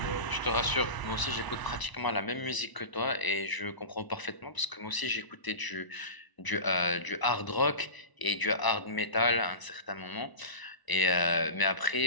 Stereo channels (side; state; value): right; late; 1.0 ms